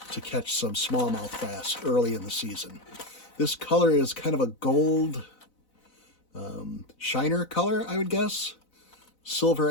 to catch some smallmouth bass early in the season. This color is kind of a gold shiner color, I would guess. Silver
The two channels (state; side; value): late; right; 4.0 ms